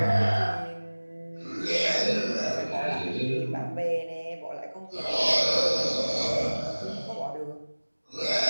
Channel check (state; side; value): inverted; both; correlation -1.00